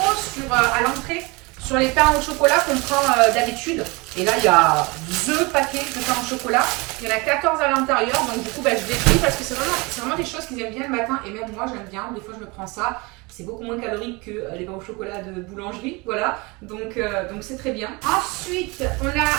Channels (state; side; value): quieter; left; 26.2 dB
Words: à l'entrée sur les pains au chocolat qu'on prend d'habitude. Et là, il y a 2 paquets de pains au chocolat. Il y en a 14 à l'intérieur. Donc, du coup, je l'ai pris parce que c'est vraiment des choses qu'ils aiment bien le matin. Et même moi, j'aime bien. Des fois, je me prends ça. C'est beaucoup moins calorique que les pains au chocolat de boulangerie. Voilà. Donc c'est très bien. Ensuite, on